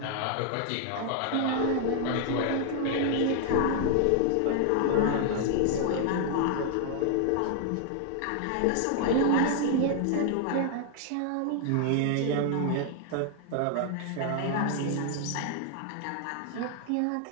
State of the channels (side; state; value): both; different; correlation 0.00